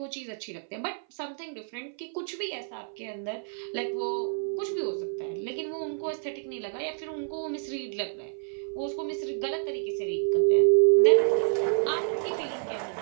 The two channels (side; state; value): left; silent; 56 dB below the other